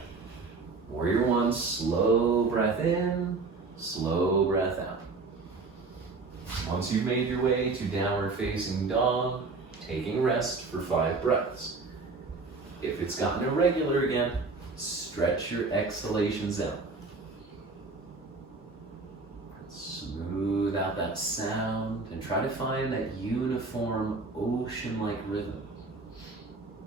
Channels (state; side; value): quieter; left; 3.9 dB